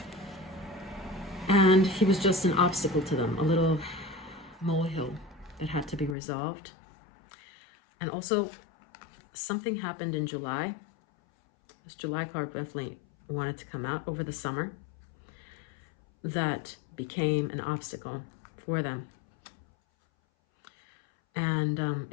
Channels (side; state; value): right; drops out; at 6.2 s